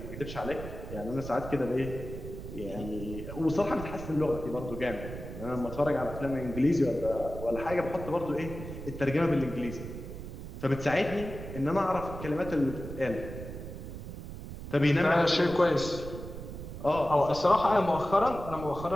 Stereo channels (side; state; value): right; noise; rumble, 10 dB below the sound